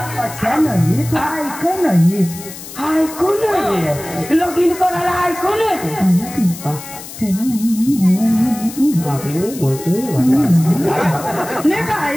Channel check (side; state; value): left; noise; hiss, 13 dB below the sound